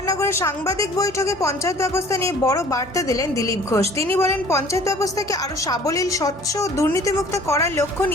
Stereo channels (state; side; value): normal; both; correlation 0.51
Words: সাংবাদিক বৈঠকে পঞ্চায়েত ব্যবস্থা নিয়ে বড় বার্তা দিলেন দিলীপ ঘোষ। তিনি বলেন, পঞ্চায়েত ব্যবস্থাকে আরও সাবলীল, স্বচ্ছ ও দুর্নীতিমুক্ত করার লক্ষ্য